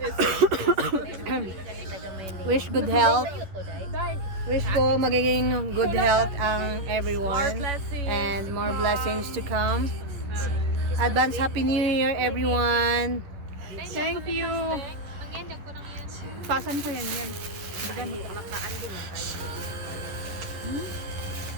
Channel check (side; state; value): left; late; 11 ms